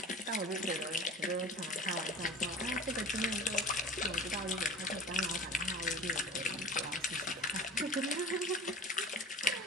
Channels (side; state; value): both; normal; correlation 0.39